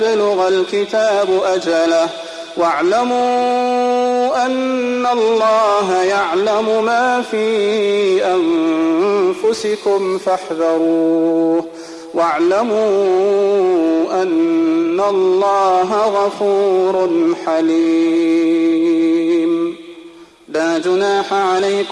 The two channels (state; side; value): identical; both; correlation 1.00